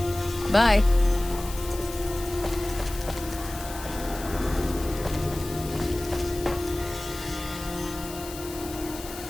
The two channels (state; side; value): noise; left; hiss, 13 dB below the sound